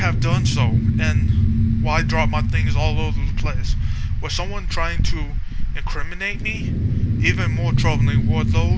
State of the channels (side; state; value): both; identical; correlation 1.00